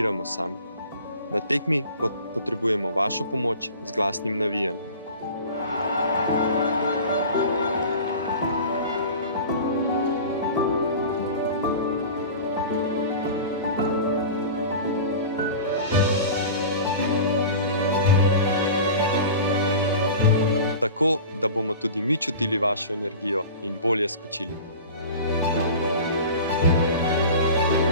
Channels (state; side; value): inverted; both; correlation -0.37